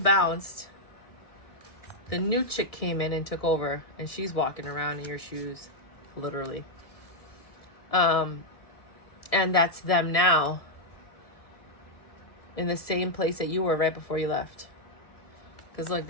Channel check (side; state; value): right; late; 1.7 ms